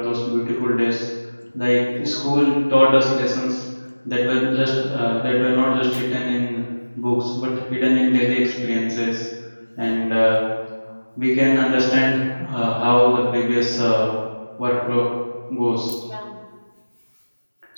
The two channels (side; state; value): both; inverted; correlation -1.00